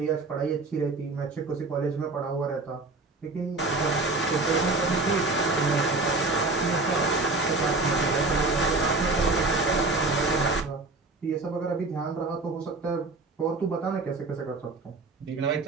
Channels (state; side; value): quieter; left; 3.4 dB